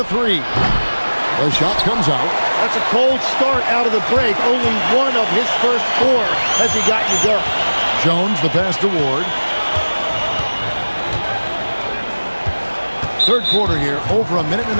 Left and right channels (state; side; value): inverted; both; correlation -1.00